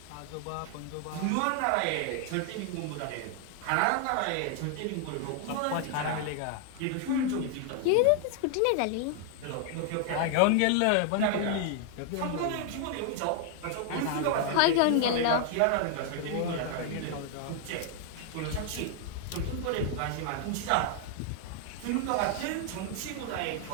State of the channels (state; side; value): different; both; correlation 0.00